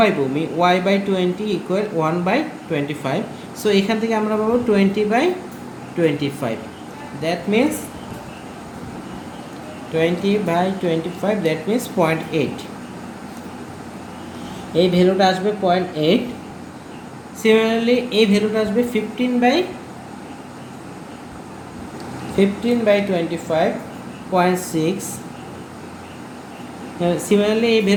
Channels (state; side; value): identical; both; correlation 1.00